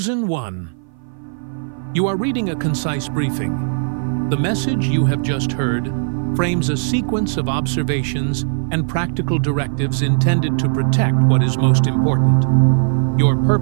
one. You are reading a concise briefing. The message you have just heard frames a sequence of observations and practical directives intended to protect what is most important: your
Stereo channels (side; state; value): left; silent; 56 dB below the other